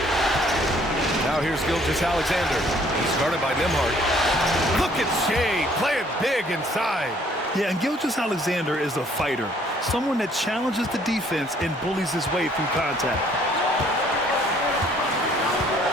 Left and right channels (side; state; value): both; normal; correlation 0.61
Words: Now here's Gilgeous-Alexander. He's guarded by Nembhard. Look at Shea playing big inside. Yeah, and Gilgeous-Alexander is a fighter. Someone that challenges the defense and bullies his way through contact.